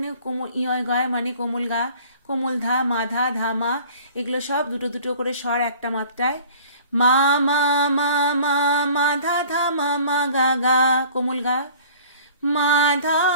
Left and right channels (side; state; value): both; inverted; correlation -0.48